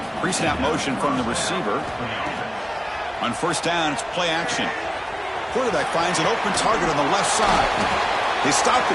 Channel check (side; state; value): both; identical; correlation 1.00